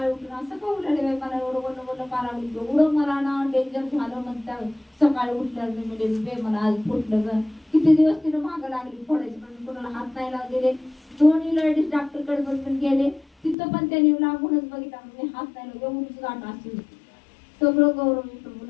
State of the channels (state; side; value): drops out; right; at 13.6 s